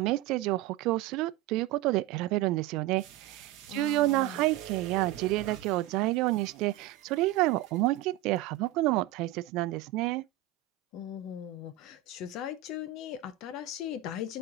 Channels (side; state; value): left; quieter; 12.6 dB